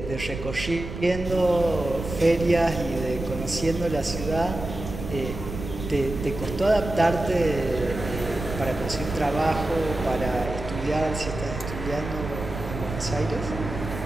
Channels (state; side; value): noise; right; rumble, 8 dB below the sound